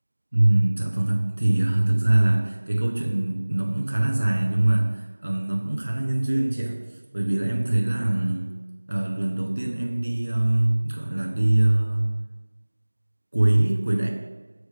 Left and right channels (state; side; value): inverted; both; correlation -1.00